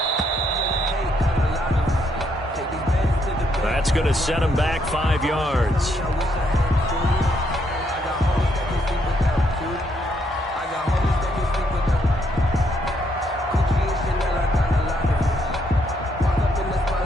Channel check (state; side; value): normal; both; correlation 0.74